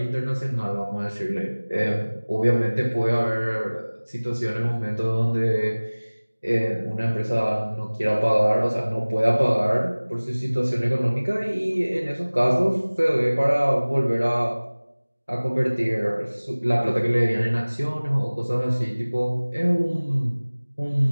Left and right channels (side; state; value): both; inverted; correlation -1.00